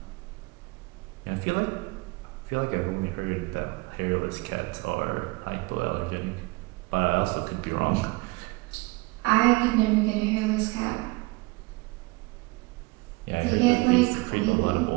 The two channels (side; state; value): left; quieter; 24.4 dB